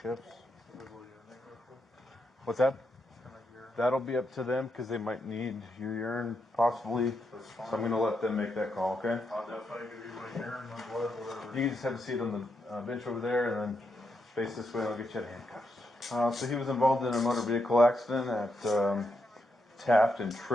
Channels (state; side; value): normal; both; correlation 0.82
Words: What's that? That'll be up to them because they might need your urine possibly. So I'm going to let them make that call, okay? I'll definitely give you my urine, my blood, whatever. You can just have a seat on the bench over there and then face this way and I'll get you out of handcuffs. So he was involved in a motor vehicle accident at Taft and